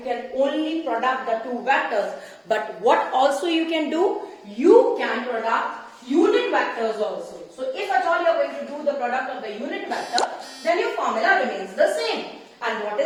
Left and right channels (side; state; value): both; identical; correlation 1.00